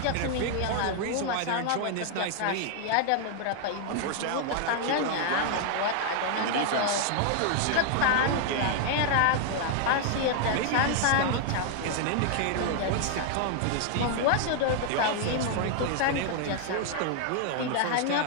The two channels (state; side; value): different; both; correlation 0.00